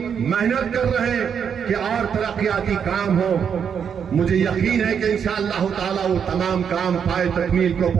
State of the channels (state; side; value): quieter; left; 7.4 dB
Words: محنت کر رہے ہیں کہ اور ترقیاتی کام ہو۔ مجھے یقین ہے کہ انشاءاللہ تعالی وہ تمام کام پائے تکمیل کو